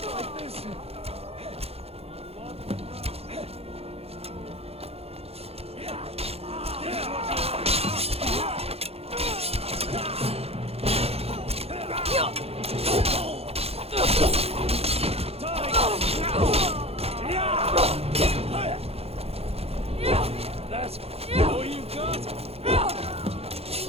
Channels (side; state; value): left; late; 0.29 ms